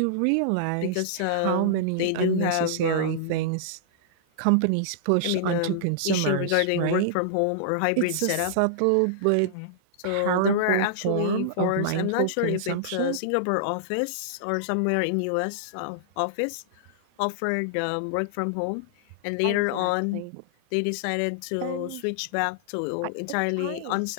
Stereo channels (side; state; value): both; different; correlation -0.02